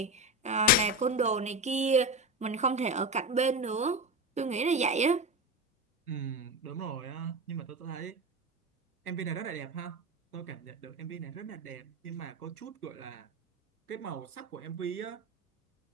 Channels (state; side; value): normal; both; correlation 0.21